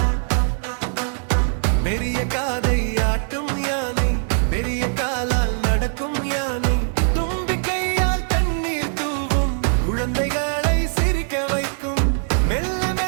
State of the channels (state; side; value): silent; left; 60 dB below the other